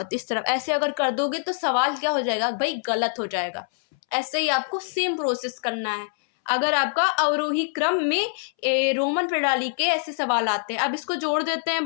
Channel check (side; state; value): right; silent; 62 dB below the other